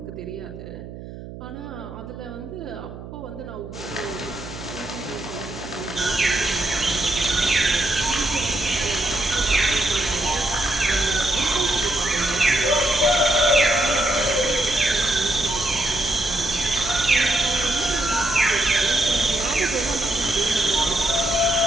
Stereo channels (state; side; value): noise; right; hum, 13 dB below the sound